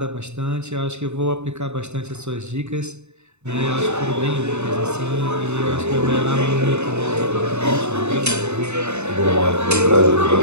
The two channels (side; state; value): left; late; 0.82 ms